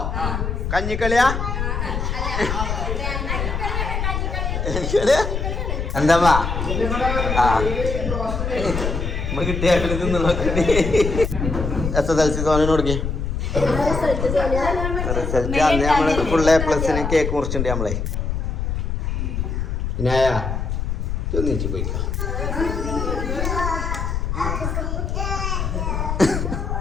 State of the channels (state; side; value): noise; left; rumble, 2 dB below the sound